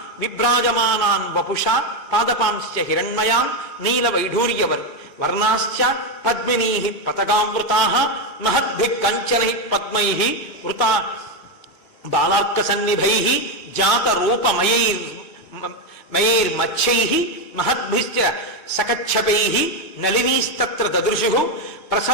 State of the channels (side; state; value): both; normal; correlation 0.07